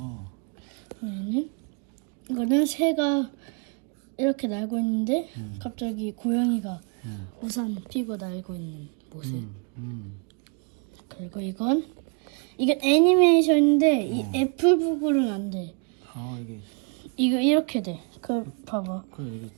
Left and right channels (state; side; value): quieter; left; 37.5 dB